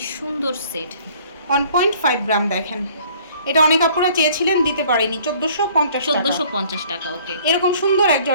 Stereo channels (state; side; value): inverted; both; correlation -0.55